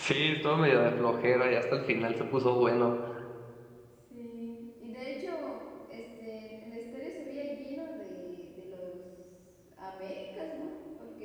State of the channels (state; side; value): identical; both; correlation 1.00